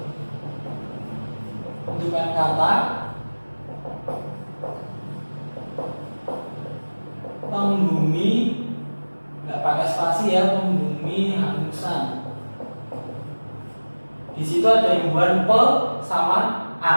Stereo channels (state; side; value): inverted; both; correlation -1.00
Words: Bentukan kata pembumi, nggak pakai spasi ya, pembumi hangusan. Di situ ada imbuhan pe sama